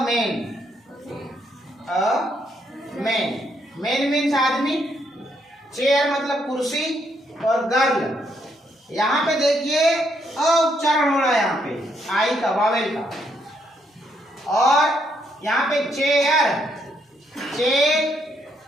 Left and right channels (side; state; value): both; normal; correlation 0.74